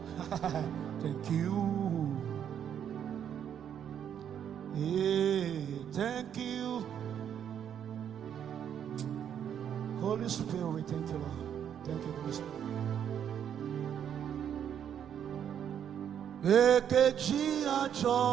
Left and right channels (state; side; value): quieter; left; 9.0 dB